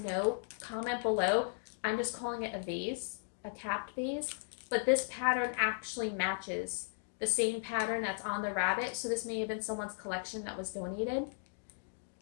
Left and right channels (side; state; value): right; silent; digital silence